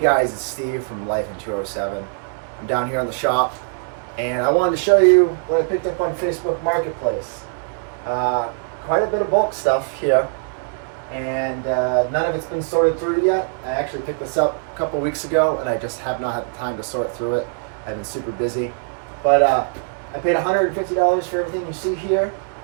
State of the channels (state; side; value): silent; left; 63 dB below the other